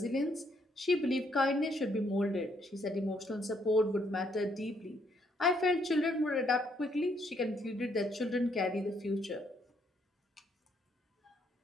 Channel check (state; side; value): normal; both; correlation 0.71